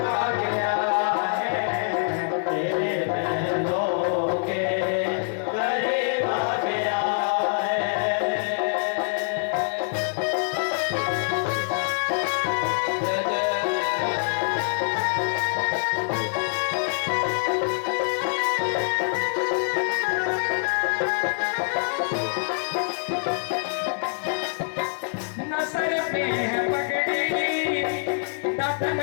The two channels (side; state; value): right; silent; digital silence